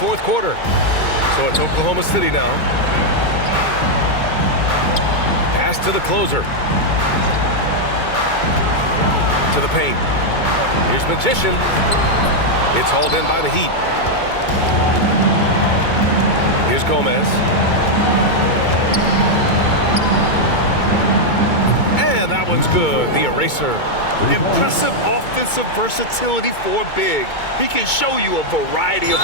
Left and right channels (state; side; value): late; right; 2.2 ms